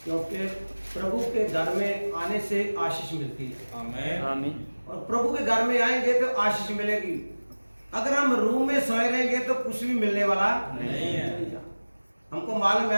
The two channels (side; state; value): both; inverted; correlation -1.00